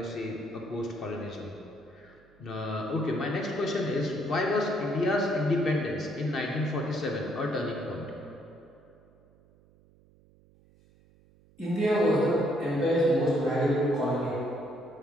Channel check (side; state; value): right; noise; hum, 29 dB below the sound